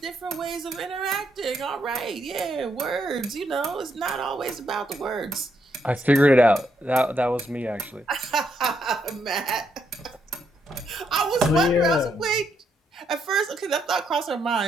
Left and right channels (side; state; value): both; normal; correlation 0.77